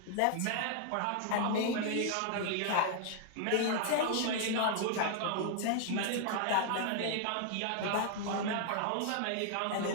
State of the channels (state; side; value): different; both; correlation 0.00